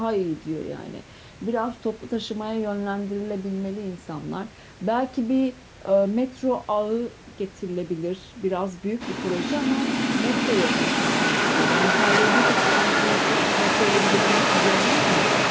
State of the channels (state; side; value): identical; both; correlation 1.00